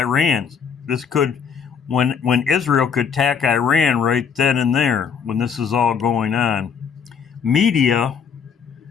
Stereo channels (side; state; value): right; quieter; 6.7 dB